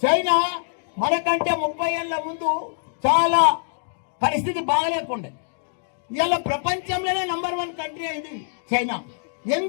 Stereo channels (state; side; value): silent; right; digital silence